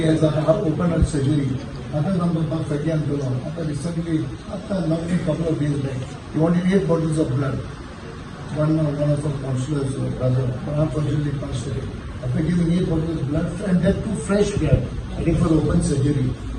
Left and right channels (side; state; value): both; identical; correlation 1.00